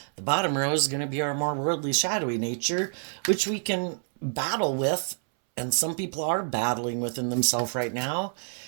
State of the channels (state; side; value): silent; left; 60 dB below the other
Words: the bottom row is going to be our more worldly, shadowy nature, which we can battle with, and some people are battling within themselves right now,